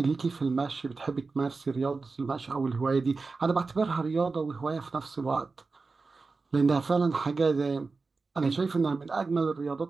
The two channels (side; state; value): left; quieter; 4.1 dB